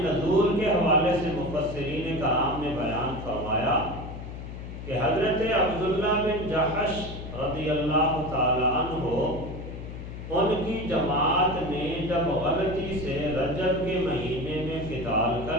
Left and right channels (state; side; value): noise; left; hum, 10 dB below the sound